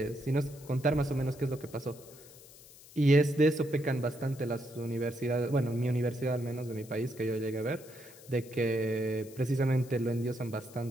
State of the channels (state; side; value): noise; left; hiss, 21 dB below the sound